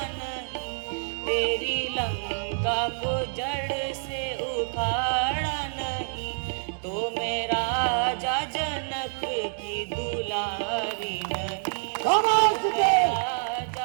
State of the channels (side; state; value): left; silent; digital silence